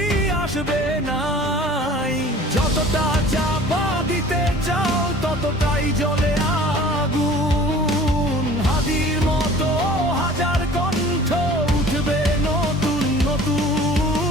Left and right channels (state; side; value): normal; both; correlation 0.46